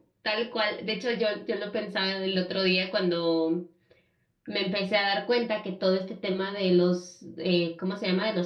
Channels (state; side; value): identical; both; correlation 1.00